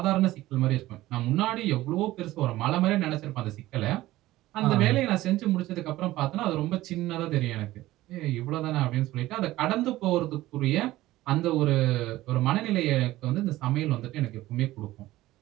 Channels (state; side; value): quieter; left; 16.5 dB